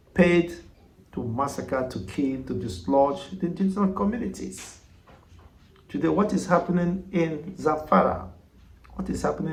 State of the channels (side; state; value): both; identical; correlation 1.00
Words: paid to massacre, to kill, to dislodge the indigenous communities. Today, what is happening in Zamfara? What is